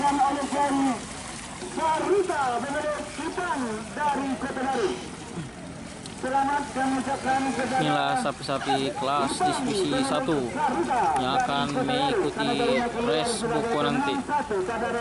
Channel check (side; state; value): both; identical; correlation 1.00